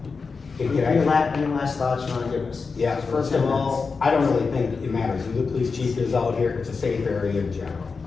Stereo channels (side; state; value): right; quieter; 4.8 dB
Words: Okay, Any last thoughts you wanna give us? Yeah, first of all, I don't really think it matters who the police chief is out here, it's a safe area in general.